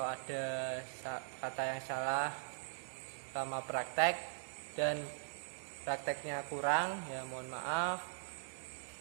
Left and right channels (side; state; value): left; silent; digital silence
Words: ada kata yang salah sama praktek dan prakteknya kurang ya, mohon maaf.